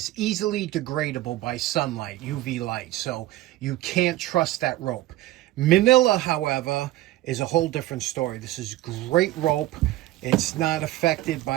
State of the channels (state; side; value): quieter; left; 16.1 dB